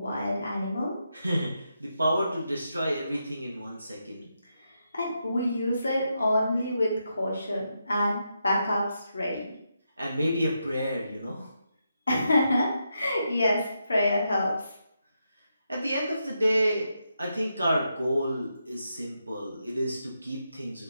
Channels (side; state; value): both; inverted; correlation -0.84